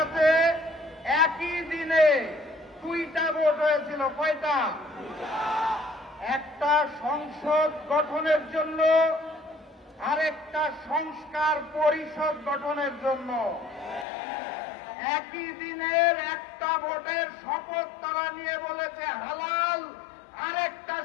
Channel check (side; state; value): right; drops out; at 14.1 s